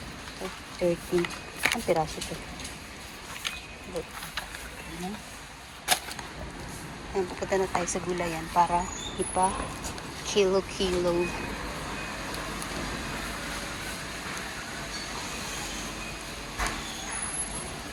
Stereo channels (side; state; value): both; identical; correlation 1.00